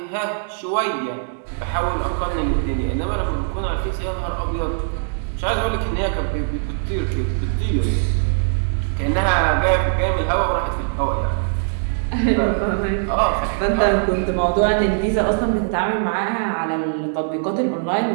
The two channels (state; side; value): silent; left; digital silence